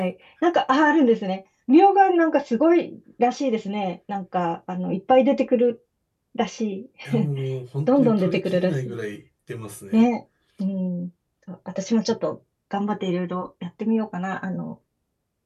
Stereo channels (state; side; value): identical; both; correlation 1.00